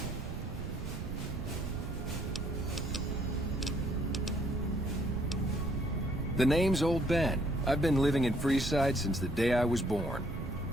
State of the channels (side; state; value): right; noise; rumble, 7 dB below the sound